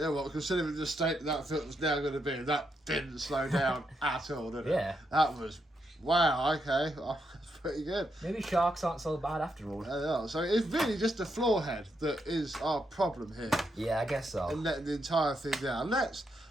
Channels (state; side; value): normal; both; correlation 0.81